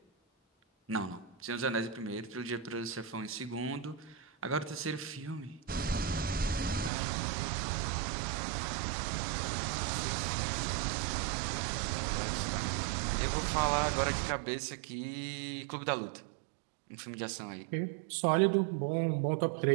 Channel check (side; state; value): left; drops out; at 6.9 s